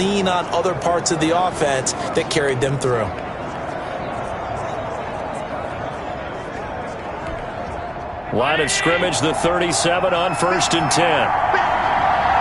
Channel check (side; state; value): both; identical; correlation 1.00